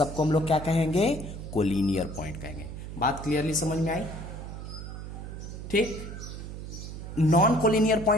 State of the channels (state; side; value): noise; right; hum, 9 dB below the sound